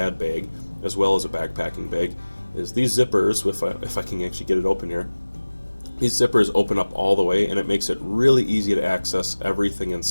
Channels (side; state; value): both; inverted; correlation -1.00